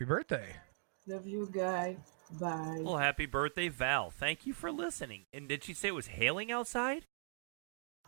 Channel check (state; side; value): silent; left; digital silence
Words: birthday. Love you, guy. Bye. Well, happy birthday, Val. Thank you for listening. And did she say it was hailing outside?